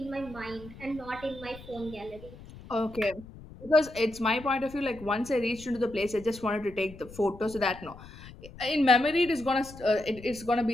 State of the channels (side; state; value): left; noise; rumble, 17 dB below the sound